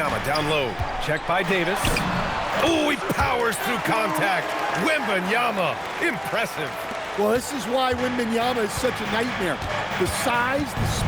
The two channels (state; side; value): identical; both; correlation 1.00